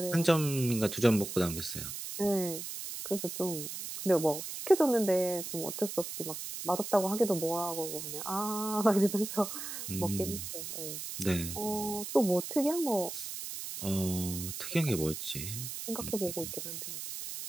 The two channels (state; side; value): noise; right; hiss, 7 dB below the sound